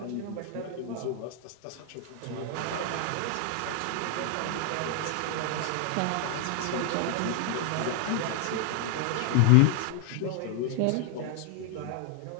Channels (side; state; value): both; different; correlation 0.00